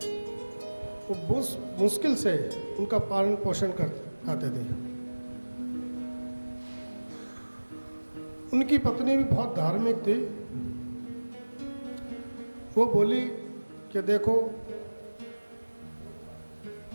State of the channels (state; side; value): inverted; both; correlation -1.00